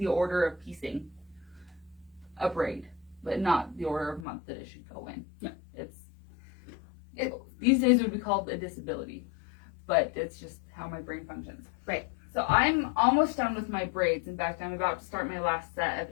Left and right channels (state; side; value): drops out; right; at 4.2 s